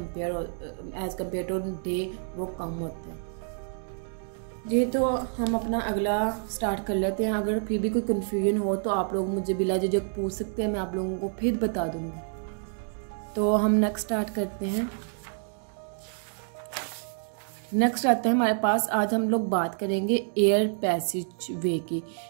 कम्पेयर टू डे वो कम होता है। ये तो हम अपना अगला स्टार्ट कर लेते हैं। अगर फिर भी कोई कन्फ्यूजन हो तो आप लोग मुझे बिला झिझक पूछ सकते हैं, मैं आप लोगों को फिर बता दूंगी। तो हम नेक्स्ट स्टार्ट करते हैं। नेक्स्ट आता है हमारे पास, आज हम लोग बात करेंगे एयर पैसेज वे की।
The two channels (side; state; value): left; silent; 59 dB below the other